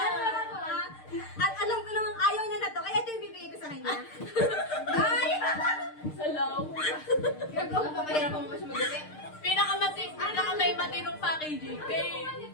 At alam ko namang ayaw niya na to, kaya ito yung bibigay ko sa kanya. Ay! Salaw. Gagawa pa, mahirap mo siya mag-upit. Pinaka-may matinong packaging. Kay...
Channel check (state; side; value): late; right; 6.6 ms